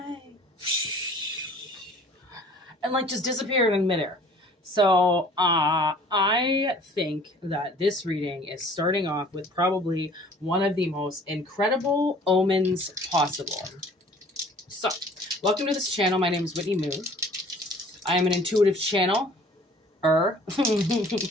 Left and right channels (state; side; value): normal; both; correlation 0.51